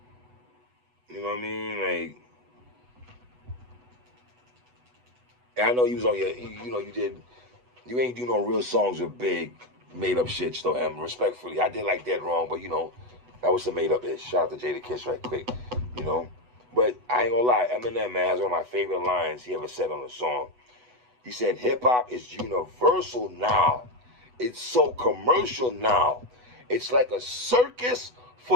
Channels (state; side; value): late; left; 8.1 ms